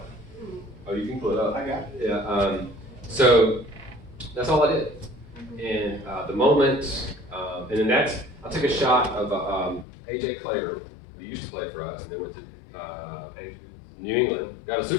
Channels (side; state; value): right; drops out; at 9.9 s